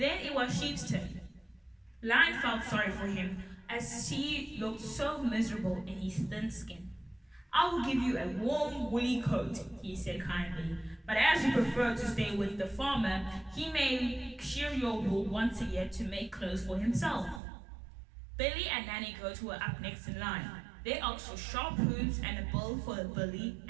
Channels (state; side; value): drops out; left; at 17.4 s